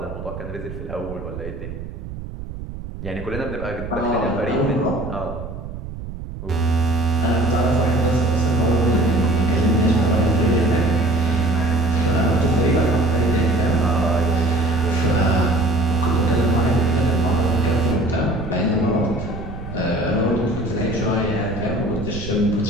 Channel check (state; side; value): noise; right; rumble, 10 dB below the sound